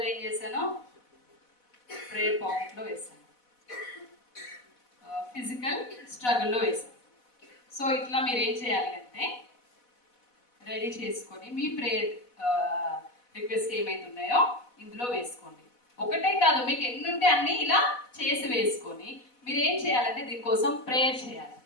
ఏం చేశాను, ప్రేయర్ పాకెట్లో వేసాను, ఫిజికల్ స్ట్రగుల్లో వేసాను. సో ఇట్లా మీరు ఏం చేయాలి అంటే రెడీ చేసుకొని మీ ప్రేయర్ రిక్వెస్ట్ ఏమైతున్నాయో ఇందులో వేసుకోండి. ఒకటే కాదు, మీకు ఎన్ని ఉంటే అన్ని ఇలా చేసి వేసుకొని మీరు ఏం చేయాలంటే దీనికోసం ప్రేయర్ చేయాలి.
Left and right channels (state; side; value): late; right; 4.1 ms